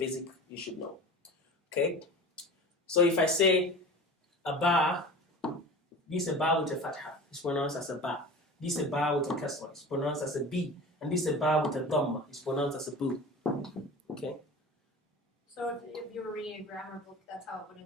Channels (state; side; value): normal; both; correlation 0.36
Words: you should know. Okay. So if I say a ba, this is a ba with a fatha. It's pronounced as a ba. This is a ba with a kasra. It's pronounced as a b. And this is a ba with a dhamma. It's pronounced as a bu. Okay. So if you were reading a grammar book, that's how it would